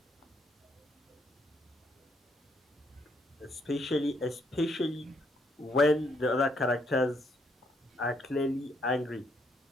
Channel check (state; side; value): normal; both; correlation 0.73